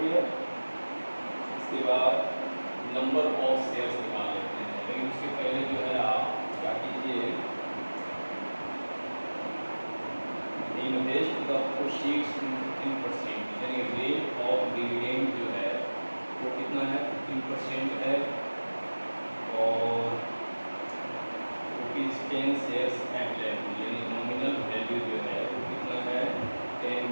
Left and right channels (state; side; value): inverted; both; correlation -1.00